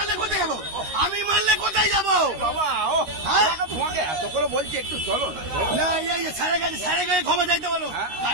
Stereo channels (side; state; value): left; late; 13 ms